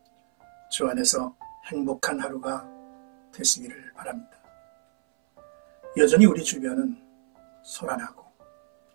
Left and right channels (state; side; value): silent; left; 61 dB below the other